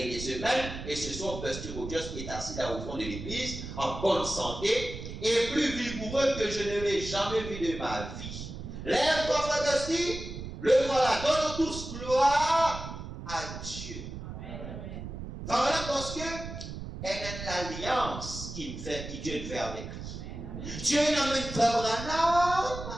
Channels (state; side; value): noise; right; rumble, 9 dB below the sound